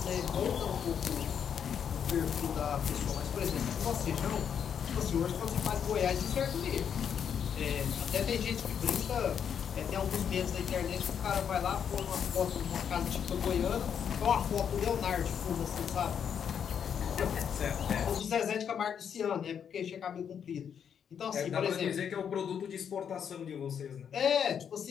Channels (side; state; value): right; quieter; 7.9 dB